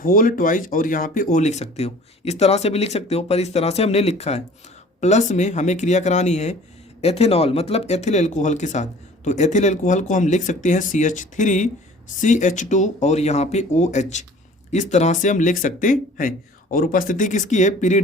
ट्वाइस और यहाँ पे O लिख सकते हो, इस तरह से भी लिख सकते हो, पर इस तरह से हमने लिखा है। प्लस में हमें क्रिया करानी है एथेनॉल मतलब एथिल एल्कोहल के साथ, तो एथिल एल्कोहल को हम लिख सकते हैं CH3CH2 और यहाँ पे OH, इस तरह से हम लिख सकते हैं। और उपस्थिति किसकी है,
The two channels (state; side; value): normal; both; correlation 0.48